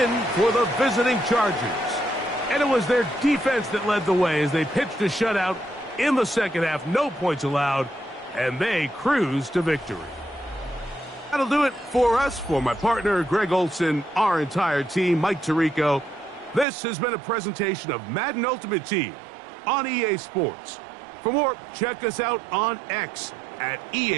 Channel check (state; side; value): drops out; left; at 16.7 s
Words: for the visiting Chargers. And it was their defense that led the way as they pitched a shutout in the second half. No points allowed, and they cruised to victory. That'll do it for us. For my partner, Greg Olson, our entire team, Mike Tirico, this has been a presentation of Madden Ultimate Team on EA Sports. For more, check us out on X at